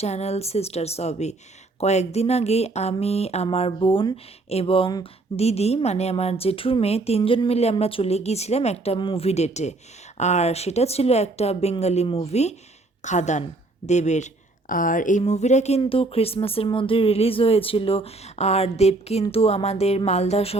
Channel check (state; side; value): quieter; left; 3.2 dB